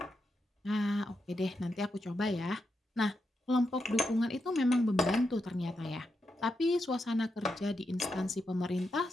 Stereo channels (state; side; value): normal; both; correlation 0.85